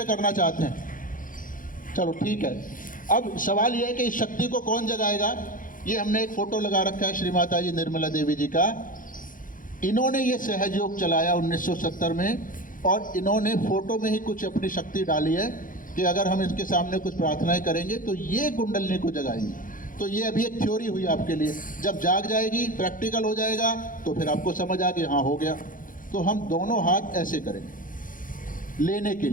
करना चाहते हैं? चलो ठीक है। अब सवाल यह है कि इस शक्ति को कौन जगाएगा? ये हमने एक फोटो लगा रखा है श्री माता जी निर्मला देवी जी का। इन्होंने ये सहयोग चलाया 1970 में, और इन्होंने फोटो में ही कुछ अपनी शक्ति डाली है कि अगर हम इसके सामने कुछ प्रार्थनाएं करेंगे तो ये कुंडलिनी को जगाएंगे। तो ये अभी एक थ्योरी हुई आपके लिए। जब जाग जाएगी, प्रैक्टिकल हो जाएगा, तो फिर आपको समझ आ गया हाँ हो गया। तो हम दोनों हाथ ऐसे करेंगे लेने के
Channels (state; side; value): late; right; 0.39 ms